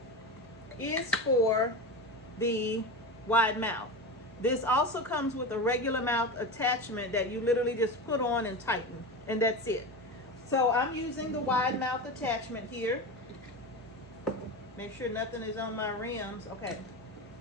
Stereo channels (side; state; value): both; normal; correlation 0.23